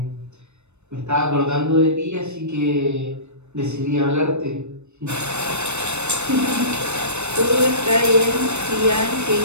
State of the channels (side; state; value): left; late; 0.82 ms